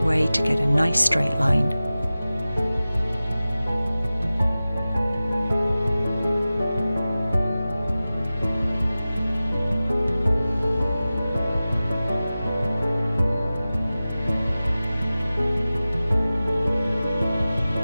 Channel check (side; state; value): both; inverted; correlation -0.96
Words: way to get a nice straight line.